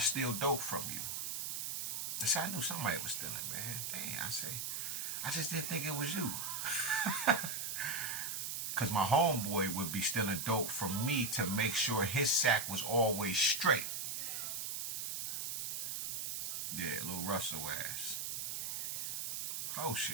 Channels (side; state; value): right; noise; hiss, 3 dB below the sound